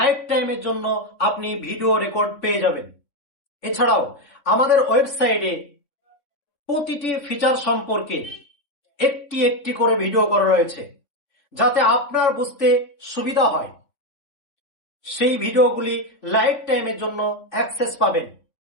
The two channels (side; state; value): right; late; 3.6 ms